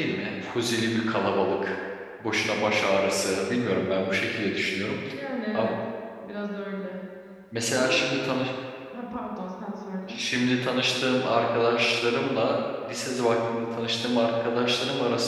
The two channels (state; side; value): identical; both; correlation 1.00